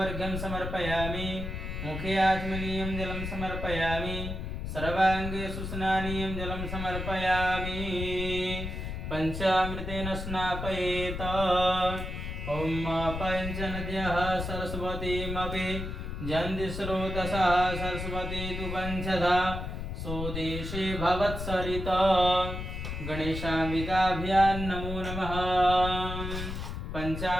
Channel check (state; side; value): noise; left; rumble, 5 dB below the sound